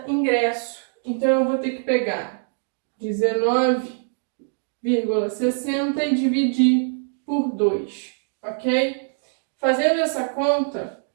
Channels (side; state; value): left; silent; digital silence